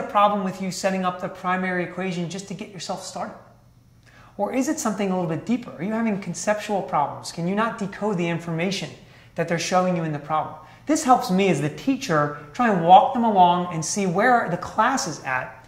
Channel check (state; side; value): identical; both; correlation 1.00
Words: problem with you setting up the primary equation just to get yourself started? Or is it something a little bit deeper? Are you having conceptual problems? Can you not decode the information that they're showing you in the problem? This helps me as the teacher try and walk them along and see where the class is at